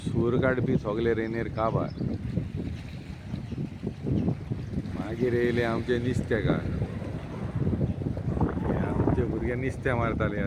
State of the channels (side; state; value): both; identical; correlation 1.00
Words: सूर काडपी सगळे रेनेर काबार. मागीर येयले आमचे नुस्तेकार. आमचे भुरगे नुस्तें मारताले